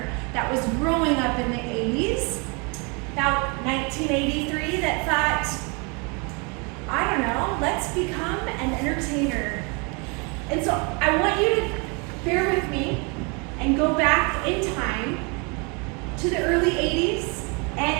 that was growing up in the 80s, about 1983, that thought, I don't know, let's become an entertainer. And so I want you to bear with me and go back in time to the early 80s,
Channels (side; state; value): left; quieter; 32.1 dB